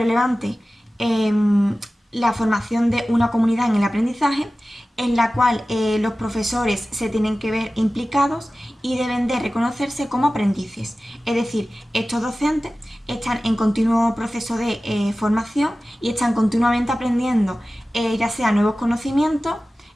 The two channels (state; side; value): normal; both; correlation 0.96